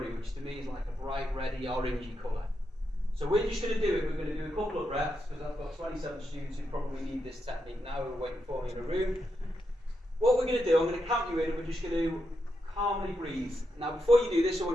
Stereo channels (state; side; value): normal; both; correlation 0.84